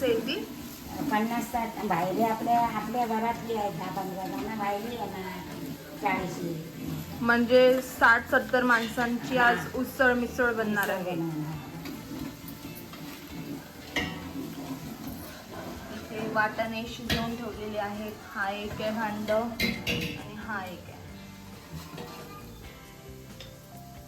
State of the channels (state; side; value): identical; both; correlation 1.00